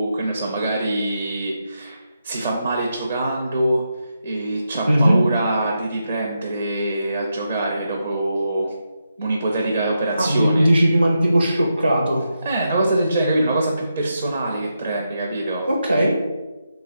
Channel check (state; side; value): inverted; both; correlation -0.85